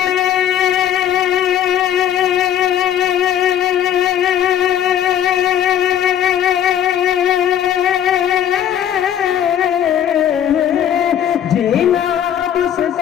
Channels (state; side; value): quieter; right; 10.2 dB